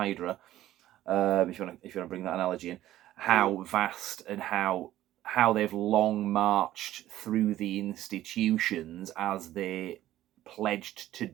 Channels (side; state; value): left; quieter; 14.0 dB